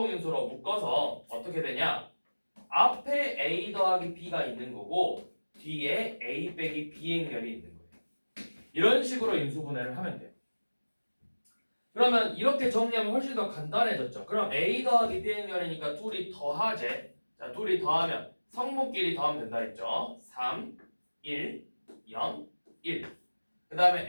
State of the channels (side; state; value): both; inverted; correlation -1.00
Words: 묶어서 어떻게 되냐? 앞에 A 더하기 B가 있는 거고 뒤에 A 빼기 B 행렬이 있는 거예요. 이런 식으로 인수분해를 하면 돼요. 그러면 이렇게 정리하면 훨씬 더 간단해졌죠. 그럼 A 더하기 B 행렬이니까 둘이 더하재. 자, 둘이 더하면 성분끼리 더하면 된다 했죠. 3, 1, 0, 1. 그